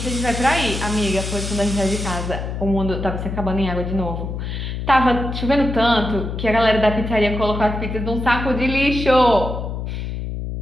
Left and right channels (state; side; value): noise; left; hum, 5 dB below the sound